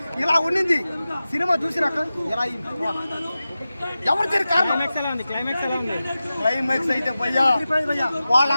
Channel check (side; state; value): both; inverted; correlation -0.94